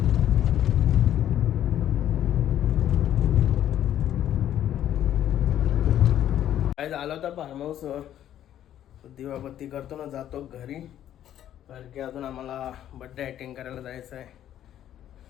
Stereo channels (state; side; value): quieter; right; 11.2 dB